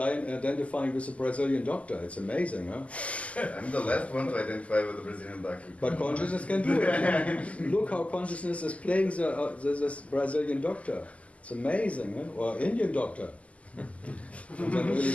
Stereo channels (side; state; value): right; late; 0.067 ms